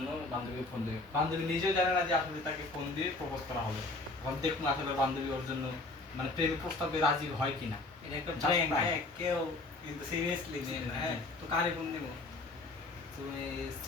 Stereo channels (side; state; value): right; quieter; 3.1 dB